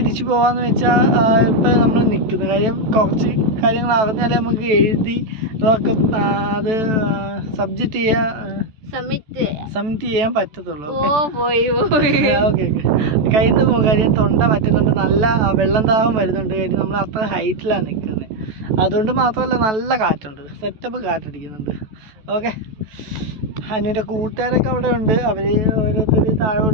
പോകാമെന്ന് വെച്ചാൽ ഇപ്പം നമ്മൾ നിൽക്കുന്നത്. കാര്യം കുറച്ച് കാര്യങ്ങൾ അറിഞ്ഞാലേ നമുക്ക് എഴുതി അതൊക്കെ അത് സബ്ജക്റ്റ് സബ്മിറ്റ് ചെയ്യാൻ പറ്റത്തുള്ളൂ. ഓക്കെ കയ്യിൽ നിന്ന് പോകും. കാര്യം തൊണ്ട പറ്റുന്നുണ്ട്, നല്ല വെള്ളം ദാഹം വരുന്നുണ്ട്. കാര്യം നമ്മൾ അത്ര ഹൈറ്റിലാണ് നിൽക്കുന്നത്. അതുകൊണ്ട് മാത്രമല്ല നല്ല കാറ്റുണ്ട്, സെറ്റപ്പ് കാറ്റടിക്കുന്നുണ്ട്. ഓക്കെ, അനുവിൻ്റെ കൂട്ടുകാരൊക്കെ അവിടെ ഉണ്ട്. അവർ ഓരോരുത്തർ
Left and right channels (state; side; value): late; left; 14 ms